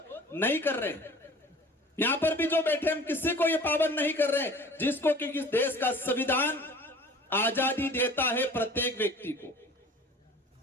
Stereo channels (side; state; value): both; normal; correlation 0.45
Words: नहीं कर रहे हैं। यहां पर भी जो बैठे हम किसी को ये पाबंद नहीं कर रहे, जिसको कि इस देश का संविधान आजादी देता है प्रत्येक व्यक्ति को।